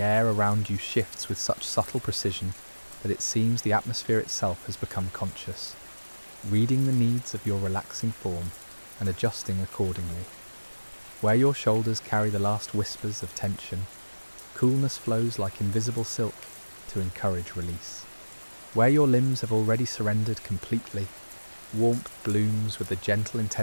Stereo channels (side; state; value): both; inverted; correlation -1.00